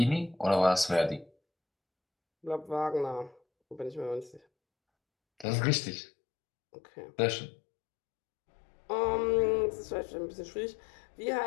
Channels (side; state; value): right; drops out; at 5.5 s